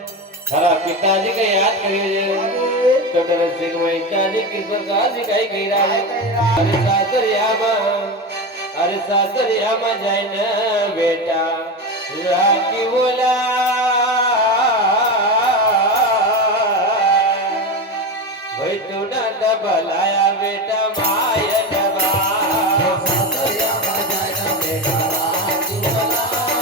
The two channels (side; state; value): both; normal; correlation 0.20